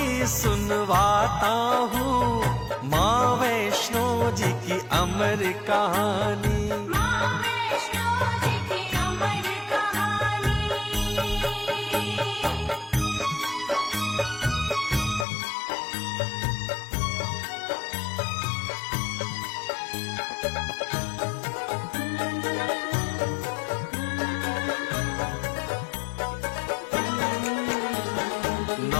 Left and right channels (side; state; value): right; drops out; at 15.2 s